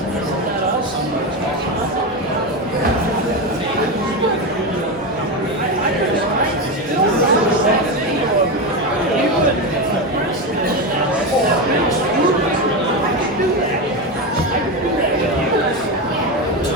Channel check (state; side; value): normal; both; correlation 0.15